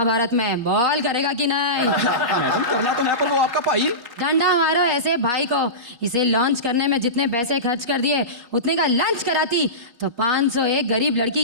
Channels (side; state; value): left; late; 4.2 ms